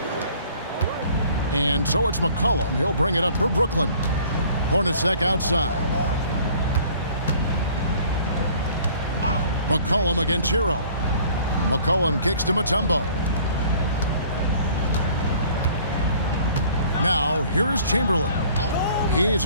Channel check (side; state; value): both; inverted; correlation -0.53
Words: And so it's McCollum. He'll bring it up for Brooklyn. Hornacek outside. McCollum against Hero. McCollum kicks to Mutombo. Now, here is Chamberlain. He's